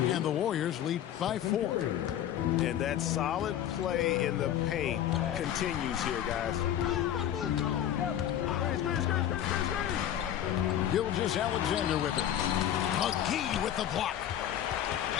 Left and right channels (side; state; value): right; quieter; 10.9 dB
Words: And the Warriors lead by 4. And that solid play in the paint continues here, guys. Gilgeous-Alexander with it. McGee with the block.